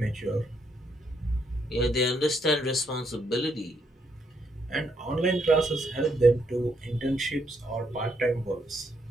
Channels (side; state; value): both; normal; correlation 0.75